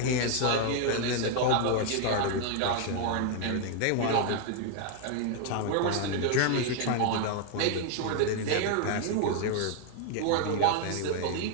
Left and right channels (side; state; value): both; different; correlation 0.00